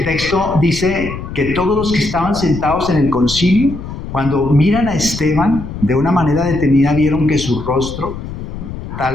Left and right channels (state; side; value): noise; left; rumble, 9 dB below the sound